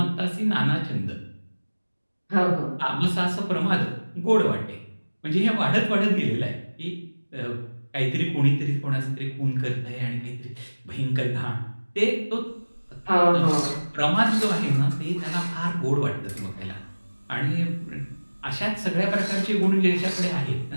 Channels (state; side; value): inverted; both; correlation -1.00